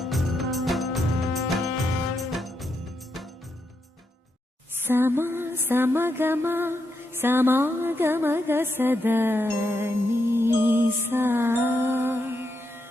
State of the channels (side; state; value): both; normal; correlation 0.82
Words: समा समगमा समागमग सदा नीसा